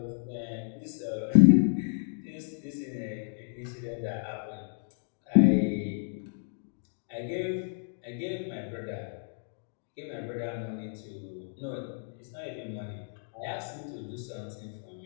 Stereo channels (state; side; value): silent; right; digital silence